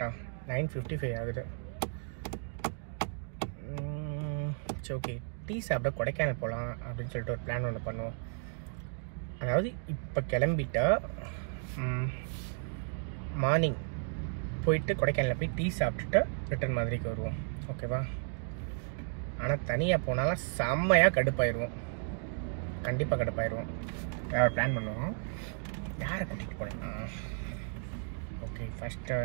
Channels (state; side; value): silent; left; 55 dB below the other